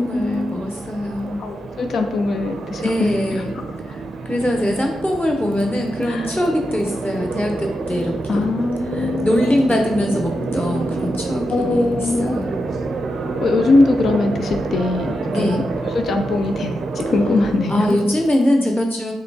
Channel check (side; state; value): both; normal; correlation 0.88